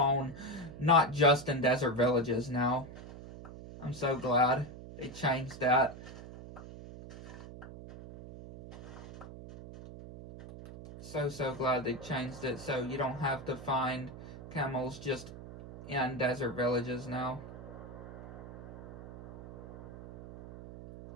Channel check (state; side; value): noise; right; hum, 14 dB below the sound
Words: not just in desert villages now. I'm so glad they changed that. So glad they changed it so you don't have to find camels just in desert villages now.